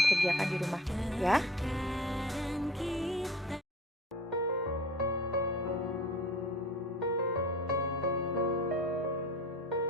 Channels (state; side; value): normal; both; correlation 0.42